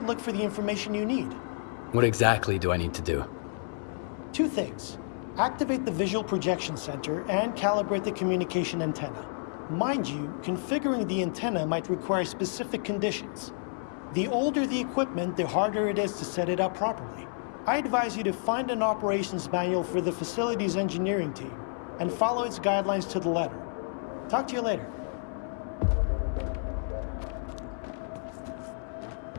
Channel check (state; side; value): silent; right; 58 dB below the other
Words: look for the information you need. What exactly do I need to do? 2 things. Activate the visual projection center and calibrate the communication antenna. Mind you, configuring the antenna might require specific conditions. The older the equipment, the harder it is to set it up properly. I advise you to find an operations manual for the facility's engineering team and follow its guidelines to the letter. Talk to you later.